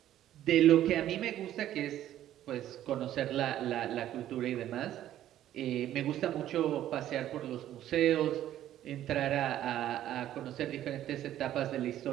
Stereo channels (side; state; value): left; quieter; 12.3 dB